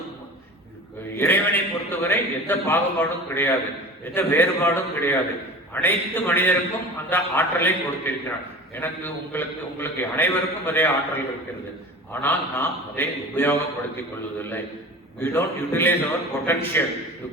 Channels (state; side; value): normal; both; correlation 0.37